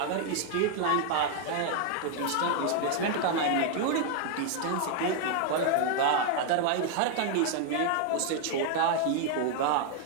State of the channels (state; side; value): different; both; correlation 0.00